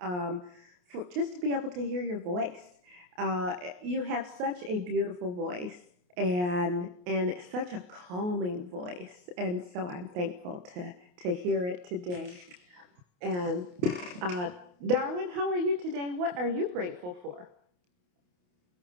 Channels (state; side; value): late; left; 28 ms